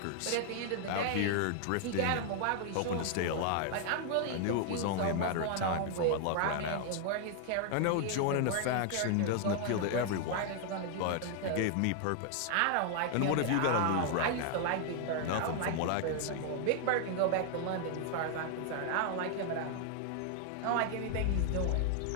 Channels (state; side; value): different; both; correlation 0.00